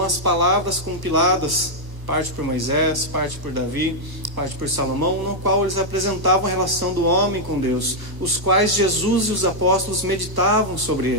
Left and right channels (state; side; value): late; left; 1.1 ms